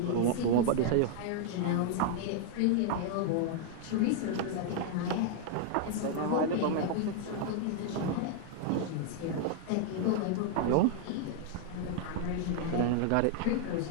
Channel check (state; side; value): different; both; correlation -0.01